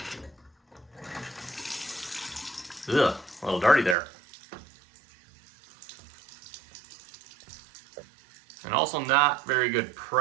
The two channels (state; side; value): drops out; left; at 4.0 s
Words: Ugh, a little dirty there. And also not very good